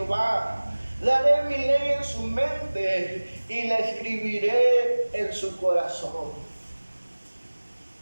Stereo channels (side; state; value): both; inverted; correlation -1.00